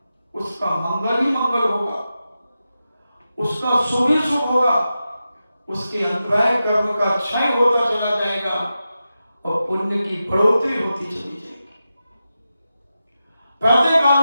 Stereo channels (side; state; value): both; inverted; correlation -0.91